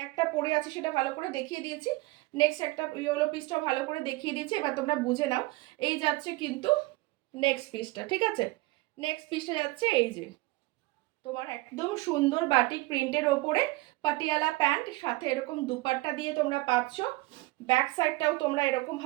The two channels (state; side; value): quieter; left; 21.5 dB